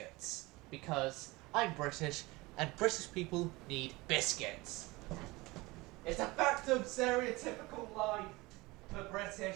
Because I'm British, and British people need biscuits. It's a fact of stereotypical life for British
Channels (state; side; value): quieter; left; 22.2 dB